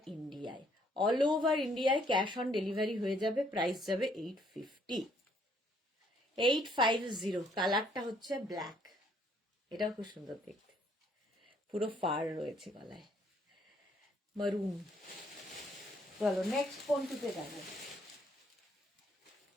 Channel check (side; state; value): both; normal; correlation 0.66